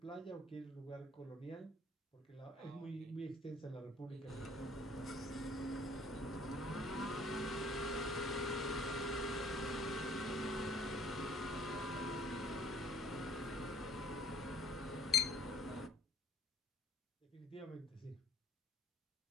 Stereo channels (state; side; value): normal; both; correlation 0.55